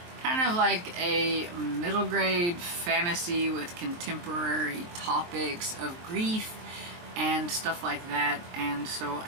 kind of like a middle grade fantasy with contemporary topics of grief and stuff like that, and so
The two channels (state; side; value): late; left; 23 ms